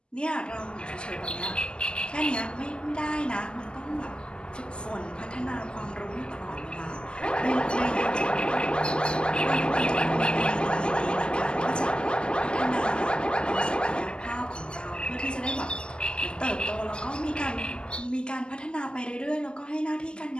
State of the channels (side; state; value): right; late; 0.049 ms